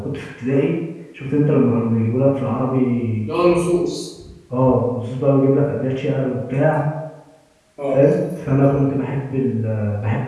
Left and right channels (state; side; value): identical; both; correlation 1.00